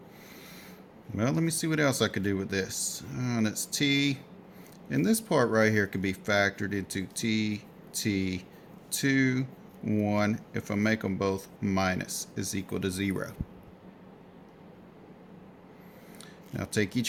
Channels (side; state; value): both; identical; correlation 1.00